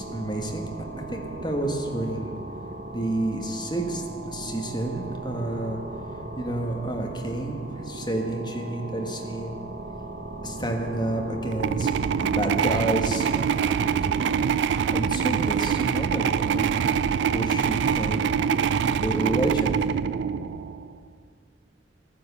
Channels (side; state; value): left; quieter; 4.6 dB